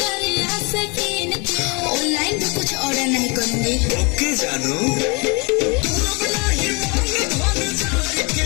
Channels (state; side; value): quieter; right; 30.5 dB